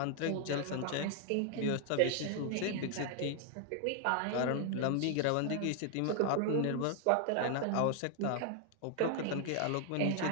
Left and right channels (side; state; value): both; different; correlation 0.00